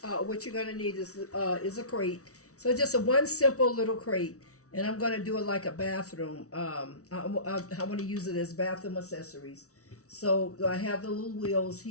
going to need is a crate. So just one simple little crate, and I'm going to do it like a bathroom. I want to use it as bathroom accessories. So I have the little wheels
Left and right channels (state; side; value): late; right; 0.65 ms